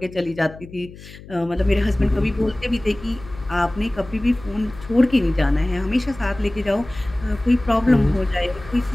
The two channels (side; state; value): left; noise; hum, 18 dB below the sound